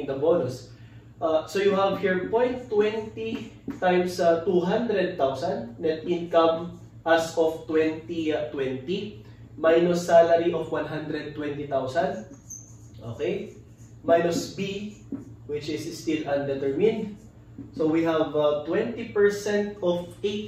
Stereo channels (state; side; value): identical; both; correlation 1.00